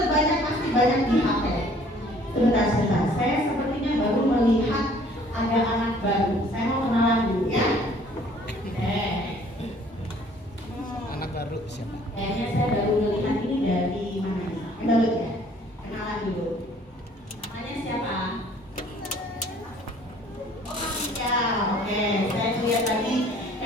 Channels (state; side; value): normal; both; correlation 0.56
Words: pasti banyak di HP. Sebentar, saya sepertinya baru melihat ada anak baru. Saya mau kenalan dulu ya. Anak baru siapa? Kayaknya saya baru melihat ini dari mana nih? Baru ya? Kenalan dulu. Namanya siapa? Oh, Asia. Oke, saya lihat tadi